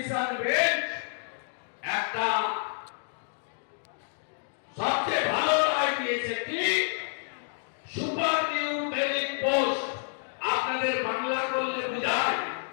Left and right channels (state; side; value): silent; right; digital silence